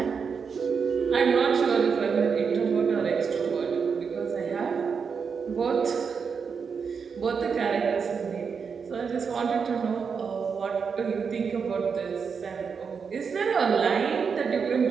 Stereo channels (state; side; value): quieter; left; 5.9 dB